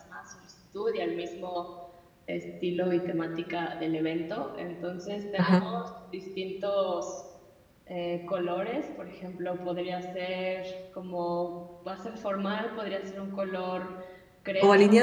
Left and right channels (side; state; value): both; identical; correlation 1.00